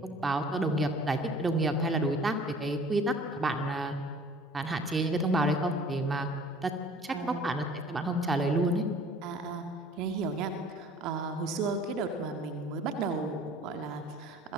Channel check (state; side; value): normal; both; correlation 0.50